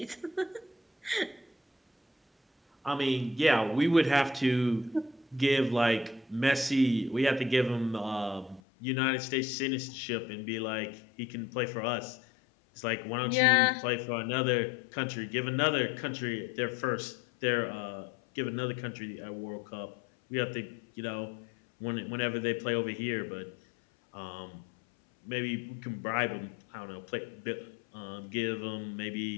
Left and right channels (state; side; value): drops out; right; at 8.6 s